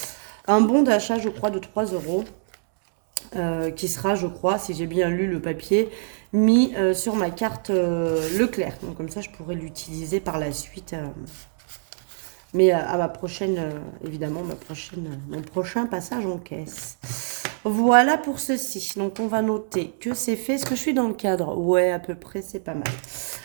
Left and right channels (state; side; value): silent; left; digital silence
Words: bon d'achat, je crois, de 3 euros, qui sera, je crois, si j'ai bien lu le papier, mis sur ma carte Leclerc. Donc comme ça, je pourrais l'utiliser par la suite. Mais à ma prochaine, évidemment, mon prochain passage en caisse. Voilà pour ceci. Donc on va noter que c'est fait. Est-ce que je suis dans le cadre? Ouais, à peu près, c'est pas mal.